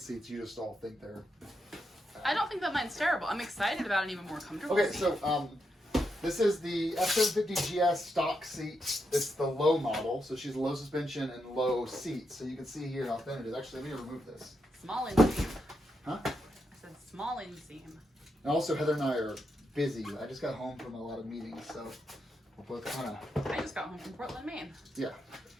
seats. You just all think they're." I don't think that mine's terrible. I'm excited about an even more comfortable Okay, seat. So, this is the F750GS stock seat. It's the low model, so she's low suspension and low seat. So you can see here how thin it is. Actually, let me remove this. Small inseam. Huh? I said small inseam. And also, Heather and I are busy. I just got home from a lot of meetings, so we're both kind of... I just got home from Portland, Maine. Yeah.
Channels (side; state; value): both; normal; correlation 0.83